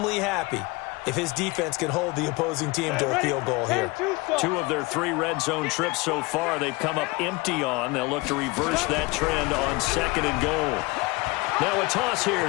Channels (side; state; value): right; quieter; 23.8 dB